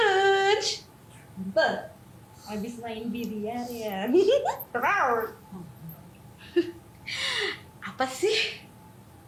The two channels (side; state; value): both; identical; correlation 1.00